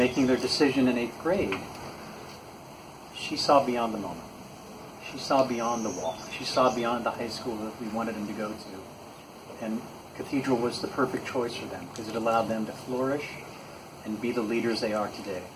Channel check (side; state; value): both; identical; correlation 1.00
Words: their decision in 8th grade, she saw beyond the moment. She saw beyond the wall. She saw beyond the high school that we wanted them to go to. And Cathedral was the perfect choice for them because it allowed them to flourish and be the leaders they are today.